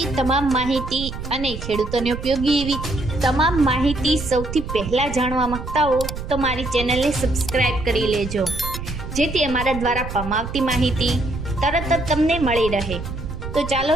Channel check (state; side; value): noise; right; rumble, 8 dB below the sound